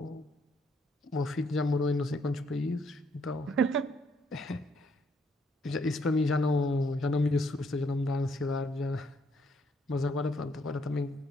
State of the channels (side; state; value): both; normal; correlation 0.70